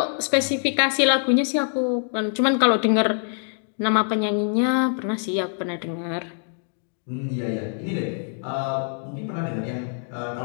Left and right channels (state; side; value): silent; right; 58 dB below the other